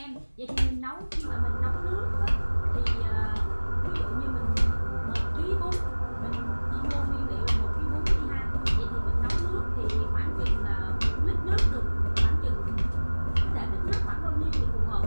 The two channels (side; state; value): both; inverted; correlation -1.00